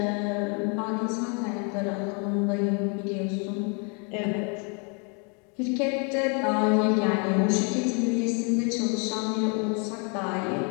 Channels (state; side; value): quieter; right; 36.0 dB